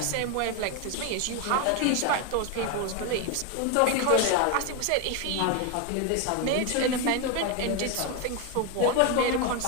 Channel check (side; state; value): both; different; correlation 0.01